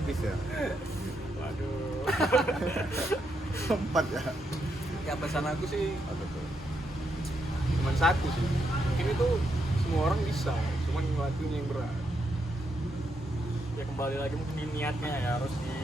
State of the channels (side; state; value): both; normal; correlation 0.80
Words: Piece ya. Waduh. Empat ya. Ya pesan aku sih Apa tuh? cuma satu sih. Mungkin itu semua orang bisa, cuman ngelakuinnya yang berat. Ya kembali lagi mungkin di niatnya ya harus